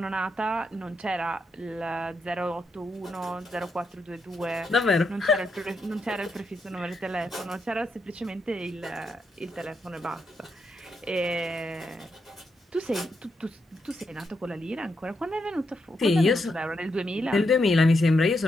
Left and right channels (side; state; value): both; normal; correlation 0.82